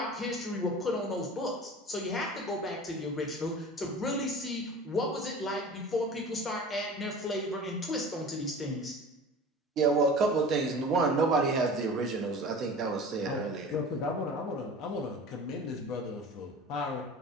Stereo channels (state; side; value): normal; both; correlation 0.38